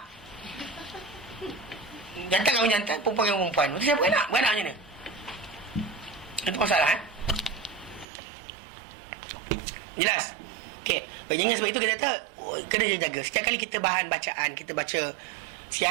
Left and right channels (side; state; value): left; drops out; at 8.1 s